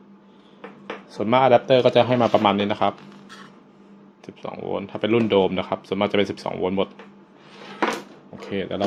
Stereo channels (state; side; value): identical; both; correlation 1.00